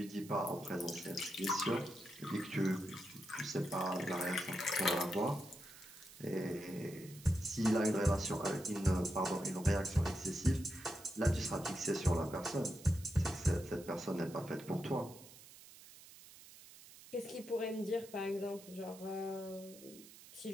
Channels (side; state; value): right; noise; hiss, 19 dB below the sound